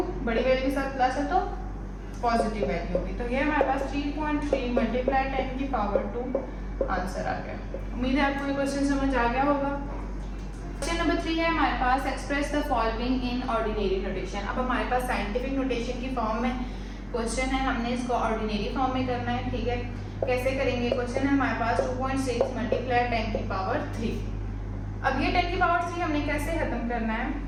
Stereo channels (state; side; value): identical; both; correlation 1.00